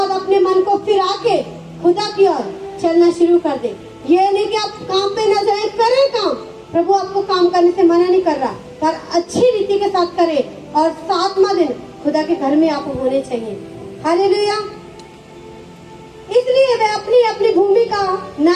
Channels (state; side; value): identical; both; correlation 1.00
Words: अपने मन को फिरा के खुदा की ओर चलना शुरू कर दे। ये नहीं कि आप काम पे न जाए, करें काम, प्रभु आपको काम करने से मना नहीं कर रहा, पर अच्छी रीति के साथ करें और 7वां दिन खुदा के घर में आप होने चाहिए। हालेलुया। इसलिए वे अपनी अपनी भूमि का